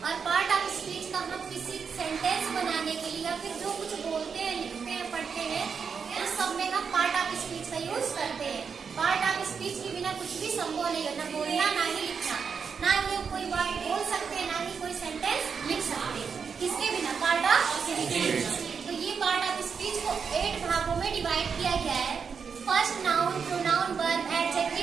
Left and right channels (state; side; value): quieter; left; 6.1 dB